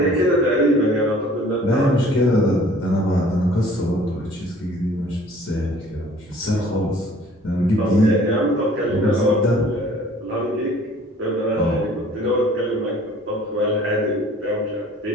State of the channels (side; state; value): both; normal; correlation 0.52